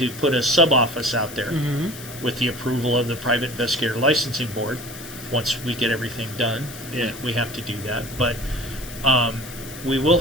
put a sub-office out there with the approval of the Private Investigator Licensing Board. Once we get everything done, we have to do that. But we will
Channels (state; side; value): noise; left; hiss, 14 dB below the sound